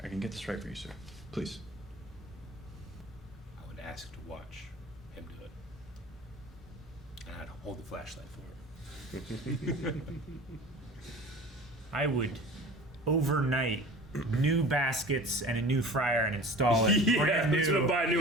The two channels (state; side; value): normal; both; correlation 0.40